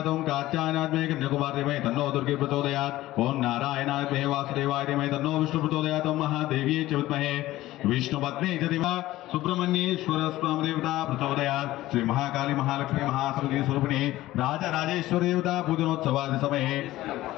ओं कात्यायनात् मे कन्याकुमारी धीमहि तन्नो दुर्गे प्रचोदयात्. ओं नारायणाय मे वासुदेवाय धीमहि तन्नो विष्णु प्रचोदयात्. ओं महादेव्यै च विद्महे विष्णुपत्न्यै च धीमहि सुब्रह्मण्येश्वर देवता प्रचोदयात्. श्री महाकाली महालक्ष्मी महासरस्वती स्वरूपिणी राजराजेश्वरी देवता पूजनोत्सवादि समये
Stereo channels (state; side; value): quieter; right; 16.2 dB